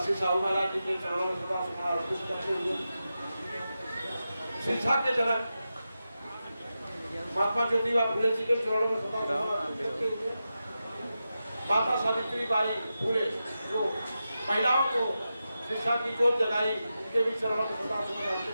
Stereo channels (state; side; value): inverted; both; correlation -0.91